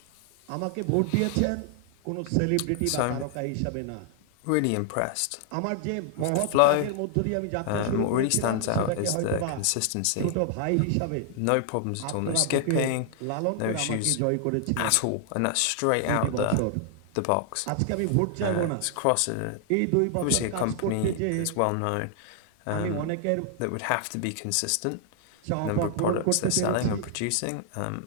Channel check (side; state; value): both; different; correlation 0.00